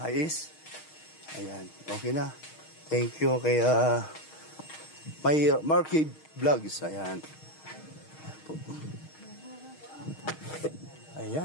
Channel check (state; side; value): late; right; 6.4 ms